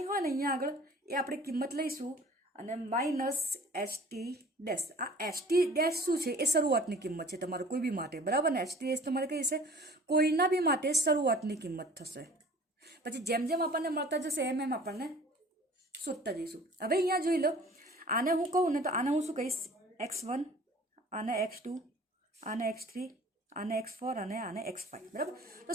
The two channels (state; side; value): normal; both; correlation 0.48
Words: હોય ને અહીંયા આગળ એ આપણે કિંમત લઈશું અને માઇનસ ST ડેશ. આ ST ડેશ શું છે, એ શરૂઆતની કિંમત છે તમારે કોઈ બી માટે, બરાબર ને. ST ડેશ તમારે કઈ છે, કોઈના બી માટે શરૂઆતની કિંમત થશે. પછી જેમ જેમ આપણને મળતા જશે એમ એમ આપણને શોધતા જઈશું. હવે અહીંયા જોઈ લો, આને હું કહું ને તો આને હું શું કહીશ, x1, આને x2, આને x3, આને x4 અને આને x5, બરાબર. તો